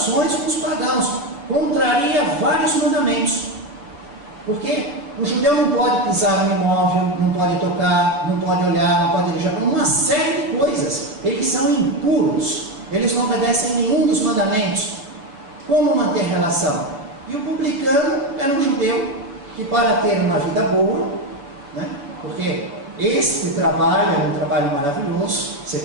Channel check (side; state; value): left; late; 7.0 ms